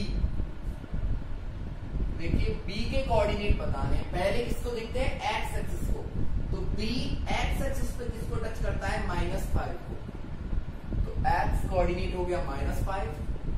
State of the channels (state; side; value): identical; both; correlation 1.00